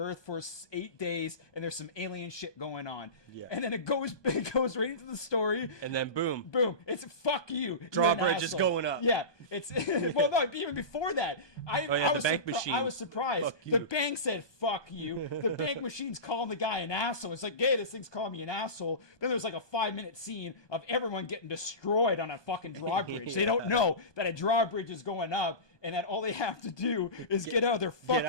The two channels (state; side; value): late; right; 1.2 ms